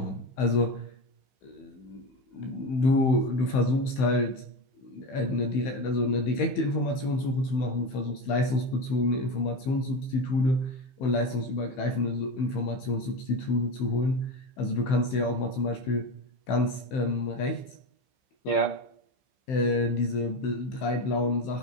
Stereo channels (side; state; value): right; late; 16 ms